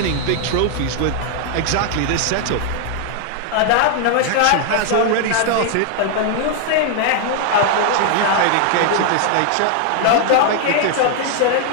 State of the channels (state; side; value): different; both; correlation 0.00